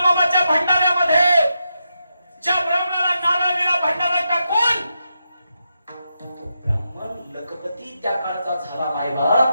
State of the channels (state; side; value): inverted; both; correlation -0.85